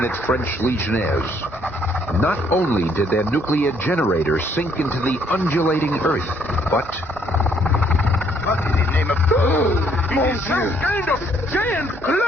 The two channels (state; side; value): normal; both; correlation 0.66